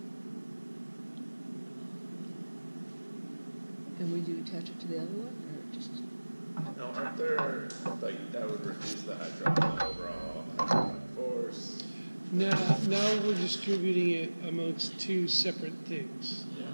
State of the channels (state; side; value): inverted; both; correlation -1.00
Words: And would you attach it to the other one, or just? No, aren't there, like, that would reduce the hydraulic overall hydraulic force? now we're distributing it amongst two separate things,